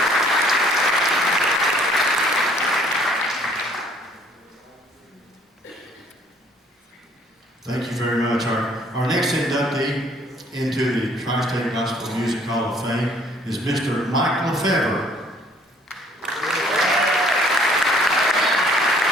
Thank you very much. Our next inductee into the Tri-State Gospel Music Hall of Fame is Mr. Mike Lefebvre.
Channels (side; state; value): both; normal; correlation 0.60